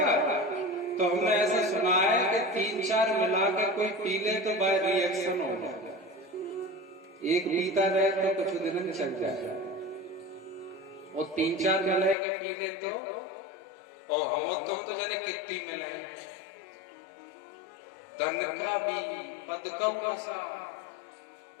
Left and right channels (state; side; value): drops out; right; at 12.2 s